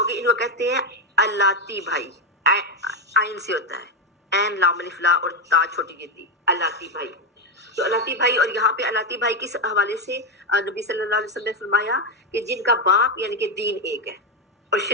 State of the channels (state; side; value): normal; both; correlation 0.09